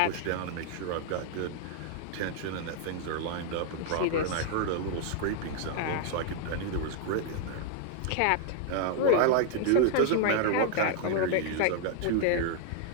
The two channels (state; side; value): different; both; correlation 0.00